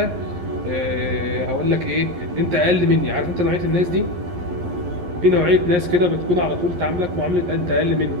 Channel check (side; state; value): left; late; 11 ms